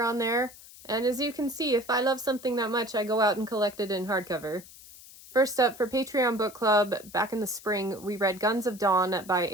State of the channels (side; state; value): left; noise; hiss, 19 dB below the sound